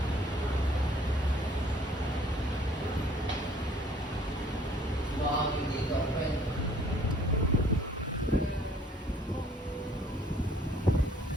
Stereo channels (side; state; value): both; normal; correlation 0.58